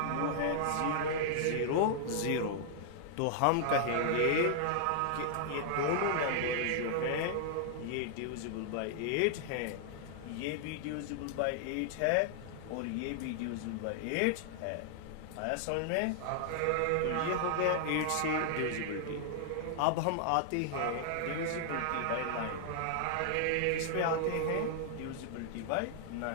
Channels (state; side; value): different; both; correlation -0.01